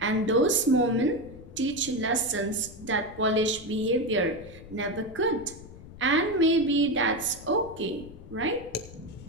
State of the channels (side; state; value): left; noise; rumble, 17 dB below the sound